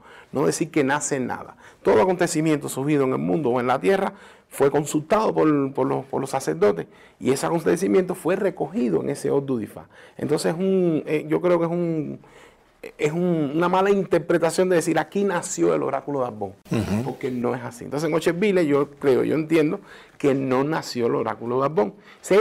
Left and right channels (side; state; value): both; identical; correlation 1.00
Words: no decir que nace nada. Todo acontecimiento surgido en el mundo o en la tierra fue consultado por los sacerdotes, y ese acontecimiento fue recogido en ese Ordu de Ifá. Entonces yo creo que es una mala interpretación de decir aquí nació el oráculo de Abon, porque no es así. Entonces en Ocheville yo entiendo que no nació el oráculo de Abon.